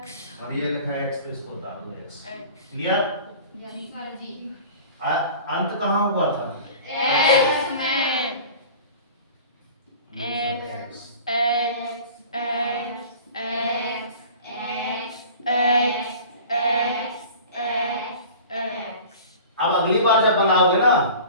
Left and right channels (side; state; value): both; inverted; correlation -0.41